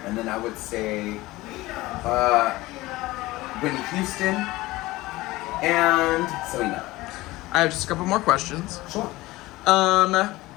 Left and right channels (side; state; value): right; quieter; 19.2 dB